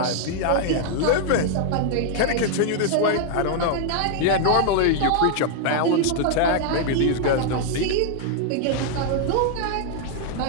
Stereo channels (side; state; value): both; different; correlation 0.00